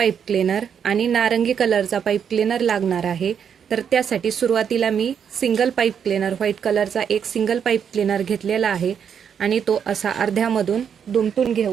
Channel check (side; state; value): left; quieter; 7.7 dB